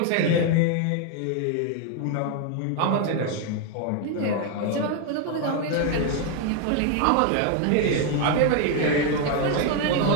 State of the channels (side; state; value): both; different; correlation 0.01